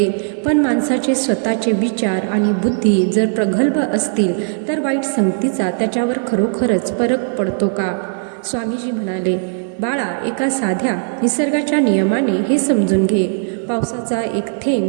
पण माणसाचे स्वतःचे विचार आणि बुद्धी जर प्रगल्भ असतील तर वाईट संगतीचा त्याच्यावर खरोखरच फरक पडतो का? स्वामीजी म्हणाले, बाळा, एका साध्या निसर्गाच्या नियमाने हे समजून घे. पावसाचा एक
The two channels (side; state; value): left; silent; digital silence